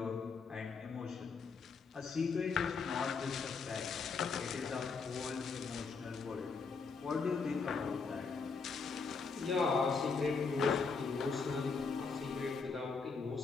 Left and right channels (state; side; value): quieter; right; 4.9 dB